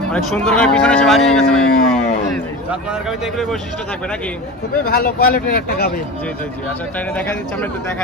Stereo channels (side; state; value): both; normal; correlation 0.29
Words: অনেক সুন্দর করে পিছনে এসে বাড়িয়ে গেছে ভাই। আপনার গাবিতে এগুলো বৈশিষ্ট্য থাকবে নাকি? খুবই ভালো কোয়ালিটির একটা গাভী। জি জি জি। আচ্ছা ট্রেনে দেখা দিচ্ছে, আমরা একটু